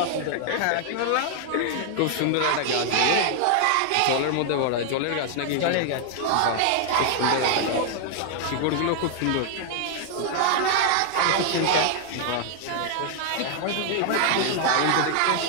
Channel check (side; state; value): both; different; correlation 0.00